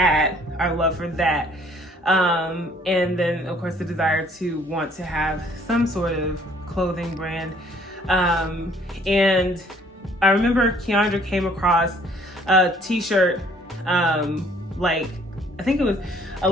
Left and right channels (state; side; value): normal; both; correlation 0.59